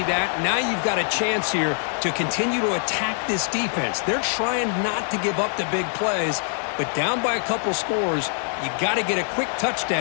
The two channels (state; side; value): silent; right; 56 dB below the other